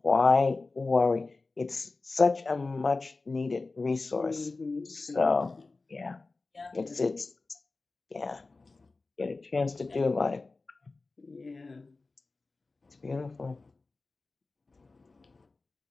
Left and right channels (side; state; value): right; quieter; 3.6 dB